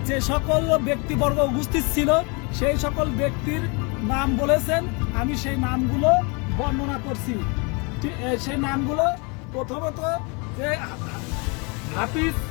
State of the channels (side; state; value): right; quieter; 31.8 dB